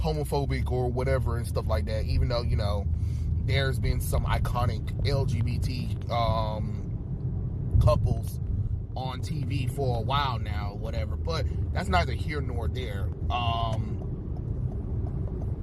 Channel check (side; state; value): both; identical; correlation 1.00